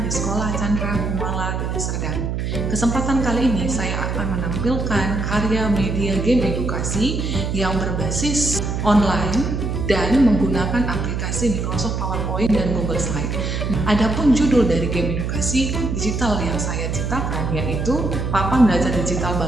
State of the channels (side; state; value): right; noise; hum, 2 dB below the sound